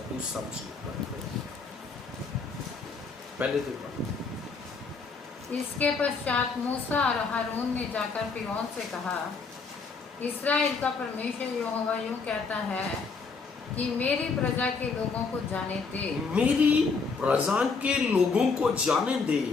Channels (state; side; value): quieter; right; 4.7 dB